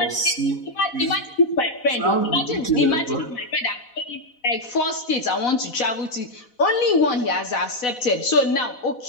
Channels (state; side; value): late; right; 4.0 ms